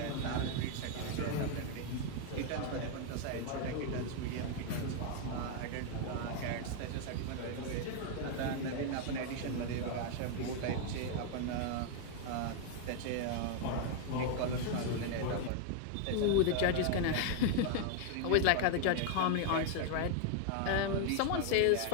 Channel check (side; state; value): both; different; correlation 0.00